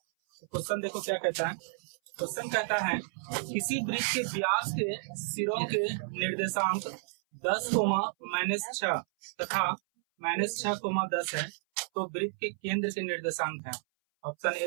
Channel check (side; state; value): left; silent; 57 dB below the other